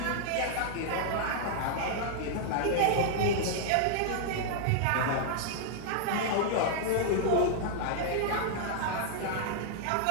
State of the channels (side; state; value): both; different; correlation -0.01